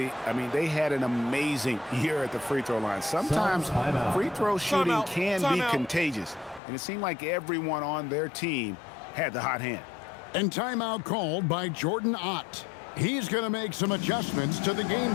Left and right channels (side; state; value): right; drops out; at 6.6 s